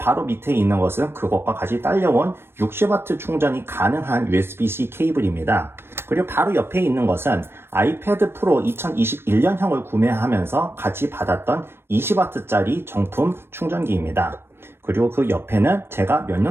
밑에 있는 것은 그것과 같이 딸려온 60W 충전이 가능한 USB-C 케이블입니다. 그리고 바로 옆에 있는 것은 아이패드 프로 2021년형을 구매하면서 같이 받았던 20W짜리 정품 충전기입니다. 그리고 그 옆에는 제가 몇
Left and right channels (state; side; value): late; left; 0.12 ms